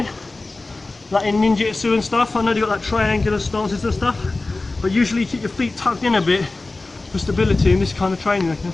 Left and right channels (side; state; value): right; quieter; 3.3 dB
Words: like in ninjutsu and stuff. I know they've got like triangular stances and stuff, but usually keep your feet tucked in a bit for stability in this kind of training. Okay,